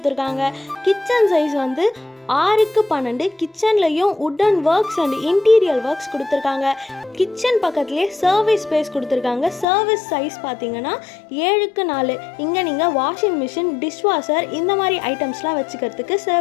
கிச்சன் சைஸ் வந்து 6க்கு 12. கிச்சன்லையும் wooden works and interior works கொடுத்துருக்காங்க. கிச்சன் பக்கத்துலேயே சர்வீஸ் ஸ்பேஸ் கொடுத்துருக்காங்க. சர்வீஸ் சைஸ் பார்த்தீங்கன்னா 7க்கு 4. இங்கே நீங்கள் வாஷிங் மிஷின், டிஷ்வாஷர் இந்த மாதிரி ஐட்டம்ஸ்லாம் வச்சுக்கிறதுக்கு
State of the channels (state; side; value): drops out; right; at 9.7 s